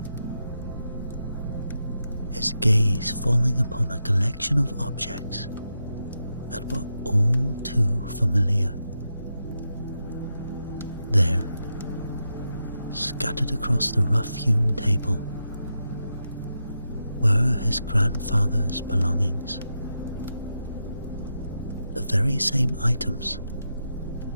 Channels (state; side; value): inverted; both; correlation -0.87